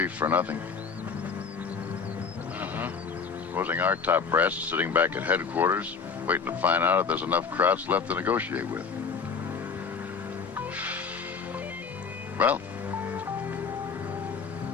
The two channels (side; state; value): right; quieter; 5.5 dB